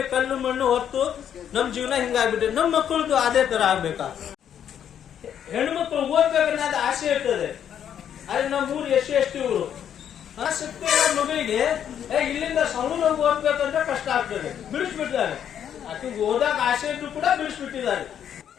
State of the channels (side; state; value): right; quieter; 9.3 dB